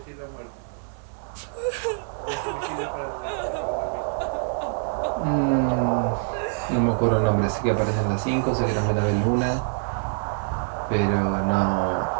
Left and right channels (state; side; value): silent; left; 62 dB below the other